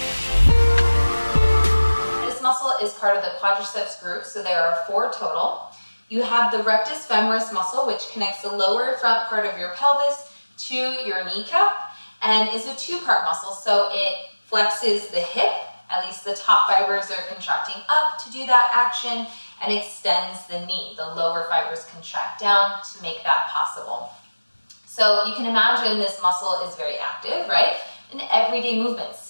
This muscle is part of the quadriceps group, so there are 4 total. You have the rectus femoris muscle, which connects the lower front part of your pelvis to your kneecap, and is a 2-part muscle, so it flexes the hip, at least the top fibers are contracting up to do that action, and extends the knee. The lower fibers contract down to make that possible. So you can imagine this muscle is very active, right? In everyday movement,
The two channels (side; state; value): both; inverted; correlation -1.00